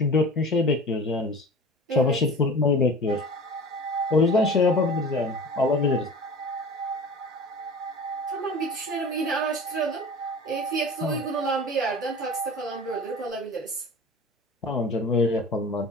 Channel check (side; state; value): both; normal; correlation 0.38